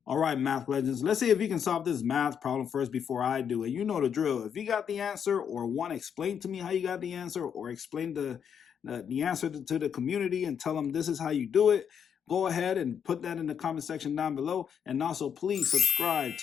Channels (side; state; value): right; quieter; 7.8 dB